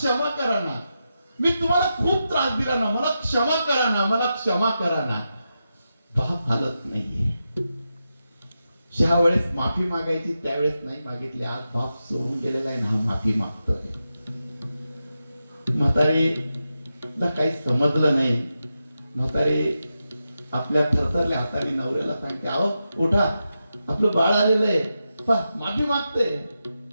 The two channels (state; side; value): inverted; both; correlation -0.89